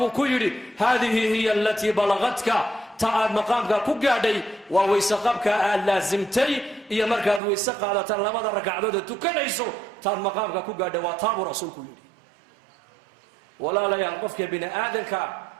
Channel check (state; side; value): drops out; left; at 7.4 s